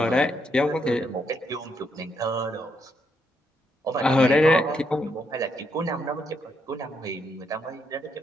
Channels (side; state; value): both; normal; correlation 0.77